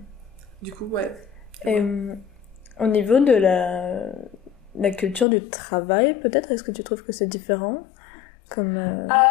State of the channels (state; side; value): drops out; right; at 5.2 s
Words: Du coup, ouais. Et au niveau de la culture du travail, peut-être, est-ce que tu trouves que c'est différent